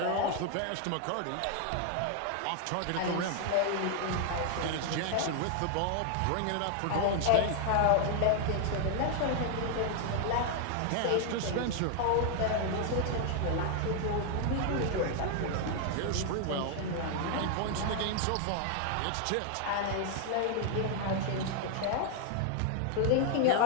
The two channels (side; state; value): both; different; correlation 0.00